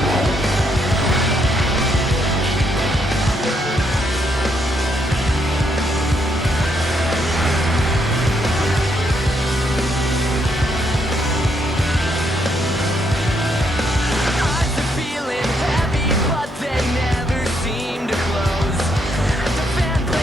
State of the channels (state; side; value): normal; both; correlation 0.74